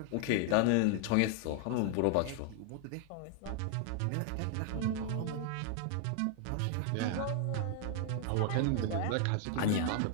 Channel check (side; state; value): both; different; correlation 0.00